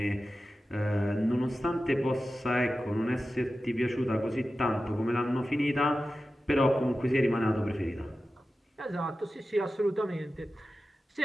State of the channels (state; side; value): normal; both; correlation 0.93